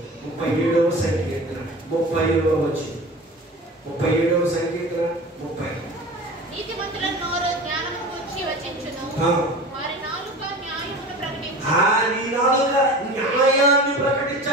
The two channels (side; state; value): both; normal; correlation 0.35